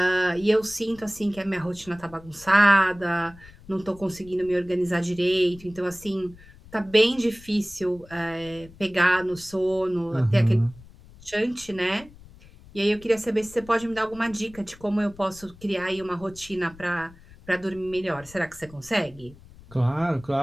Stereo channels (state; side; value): noise; left; rumble, 22 dB below the sound